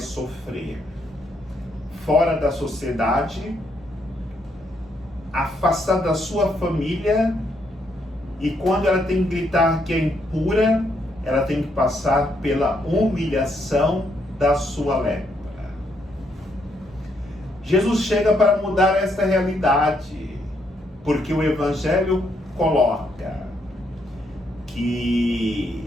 fora da sociedade, afastada da sua família, e quando ela tem que gritar que é impura, ela tem que passar pela humilhação da sua lepra. Jesus chega para mudar essa realidade, porque o Evangelho coloca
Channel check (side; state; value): both; normal; correlation 0.75